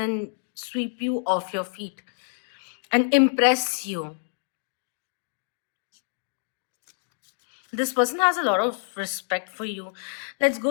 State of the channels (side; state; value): right; silent; digital silence